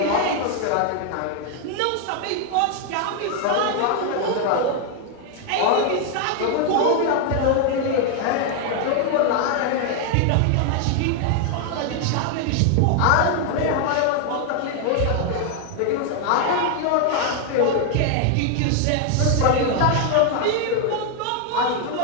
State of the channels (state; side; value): different; both; correlation 0.00